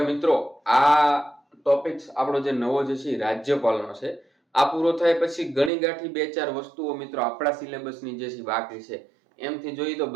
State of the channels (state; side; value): drops out; left; at 5.7 s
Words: મિત્રો આ ટોપિક આપણો જે નવો જે છે રાજ્યપાલનો છે. આ પૂરો થાય પછી ગણી ગાંઠી બે ચાર વસ્તુઓ મિત્રો આપણા સિલેબસની જે છે બાકી છે. એમથી જોઈએ તો